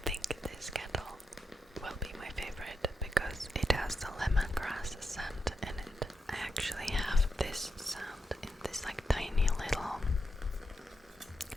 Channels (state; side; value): normal; both; correlation 0.86